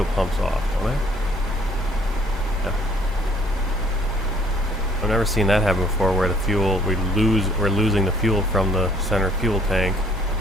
pumps off, don't I? Yeah. I've never seen that happen before, where the fuel, we're losing the fuel from the center fuel tank.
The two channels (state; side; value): normal; both; correlation 0.59